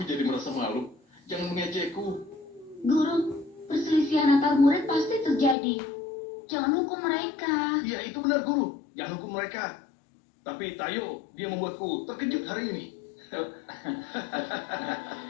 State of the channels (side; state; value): right; drops out; at 5.6 s